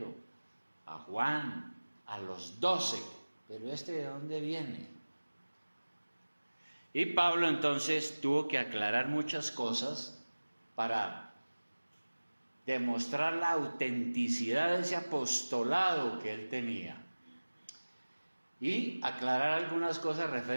a Juan, a los 12, pero ¿este de dónde viene? Y Pablo entonces tuvo que aclarar muchas cosas para demostrar la autenticidad de ese apostolado que él tenía y aclarar algunas cosas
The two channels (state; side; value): inverted; both; correlation -1.00